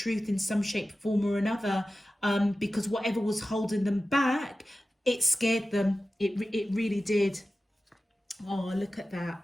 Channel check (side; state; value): both; normal; correlation 0.95